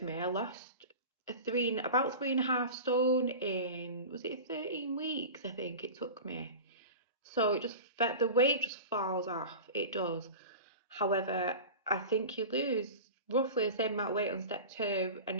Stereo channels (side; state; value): both; inverted; correlation -0.32